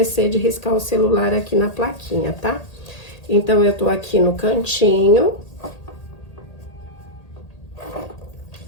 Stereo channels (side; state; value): right; late; 1.8 ms